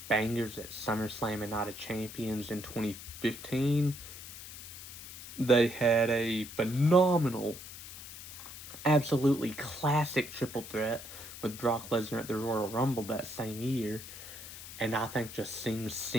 bangers at SummerSlam and Night of Champions in 2015. They had a phenomenal, absolutely classic triple threat with Brock Lesnar at the Royal Rumble that same year. And I think just seeing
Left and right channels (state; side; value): noise; left; hiss, 12 dB below the sound